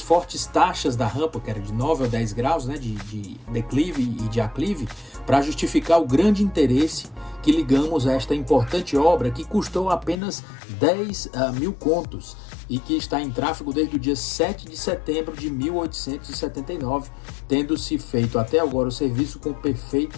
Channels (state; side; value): drops out; right; at 10.2 s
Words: taxas da rampa, que era de 9 a 10 graus, né, de declive e de aclive, para justificar o grande interesse que ligamos a esta importante obra, que custou apenas 10 mil contos e que está em tráfego desde o dia 7 de setembro de 1879, tendo-se feito até agora o serviço com